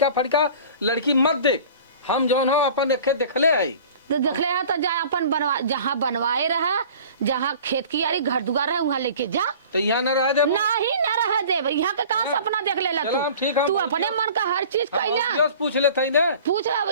फड़का लड़की मत देख, हम जौन हो अपन देखे देखले है तो देखले है तो जा अपन बनवा जहाँ बनवाए रहा जहाँ खेत की यारी घर दुआर है वहाँ लेके जा। तो यहाँ न रह दे नहीं न रह दे यहाँ के कहाँ सपना देख ले तू अपने मन का हर चीज कहना पूछ लेते ना पूछ रहा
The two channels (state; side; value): inverted; both; correlation -0.44